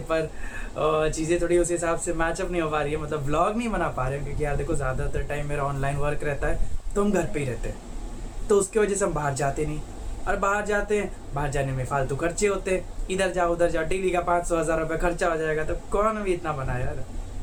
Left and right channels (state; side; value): identical; both; correlation 1.00